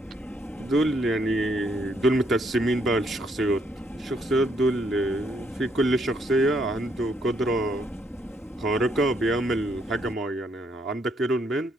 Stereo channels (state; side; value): normal; both; correlation 0.72